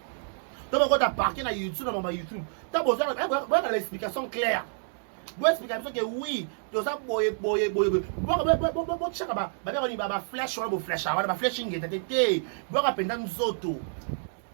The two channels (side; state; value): left; silent; digital silence